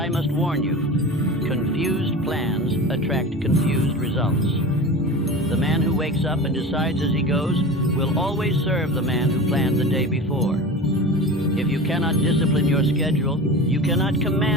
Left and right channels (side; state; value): both; normal; correlation 0.32